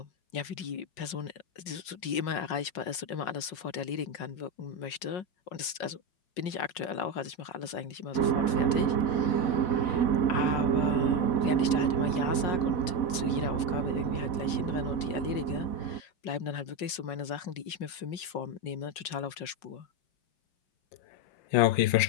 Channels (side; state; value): right; late; 5.5 ms